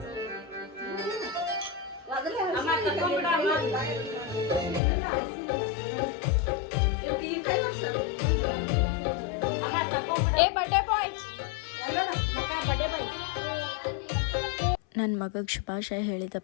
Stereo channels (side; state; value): right; drops out; at 4.8 s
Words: ನನ್ನ ಮಗಗೆ ಶುಭಾಶಯ ಹೇಳಿದ